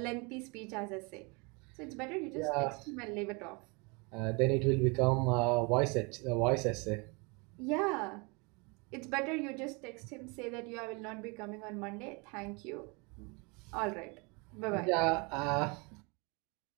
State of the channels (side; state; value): left; quieter; 30.3 dB